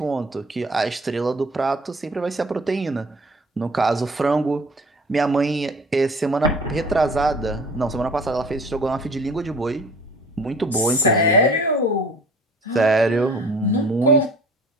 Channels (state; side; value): normal; both; correlation 0.47